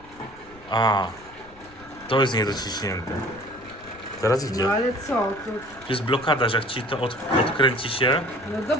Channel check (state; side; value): noise; left; rumble, 24 dB below the sound